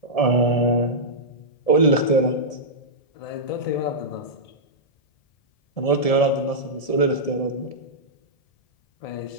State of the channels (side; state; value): right; late; 1.7 ms